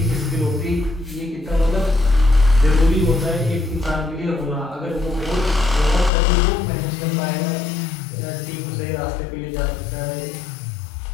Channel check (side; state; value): right; drops out; at 6.1 s